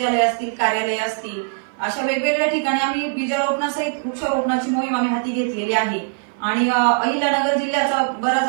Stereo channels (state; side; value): silent; left; 56 dB below the other